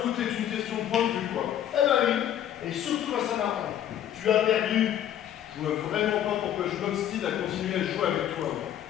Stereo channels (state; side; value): quieter; right; 10.9 dB